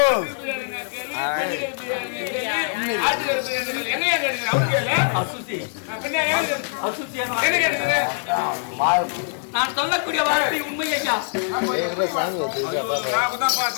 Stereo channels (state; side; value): silent; right; digital silence